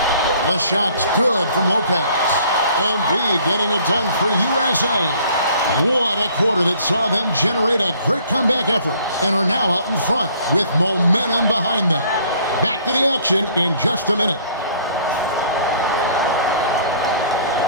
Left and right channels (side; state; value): both; inverted; correlation -0.57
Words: The shot's good from Lopez. MP getting it done for USA. What a quarter that saw them generate a great comeback effort and are now out in front with momentum behind them. Back to the action in just a minute.